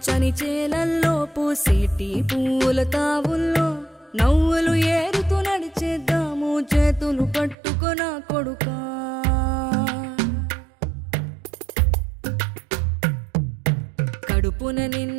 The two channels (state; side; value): drops out; left; at 7.6 s